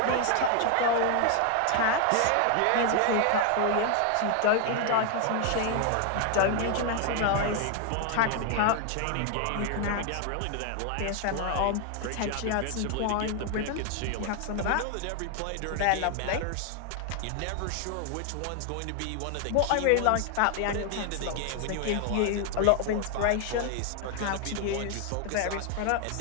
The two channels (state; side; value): different; both; correlation 0.00